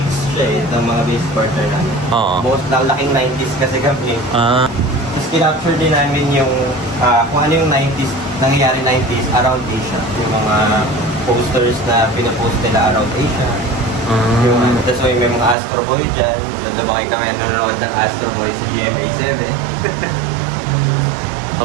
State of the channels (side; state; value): left; drops out; at 15.6 s